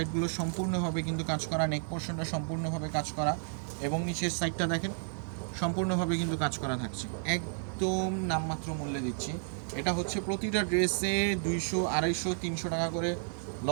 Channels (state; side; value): silent; left; 56 dB below the other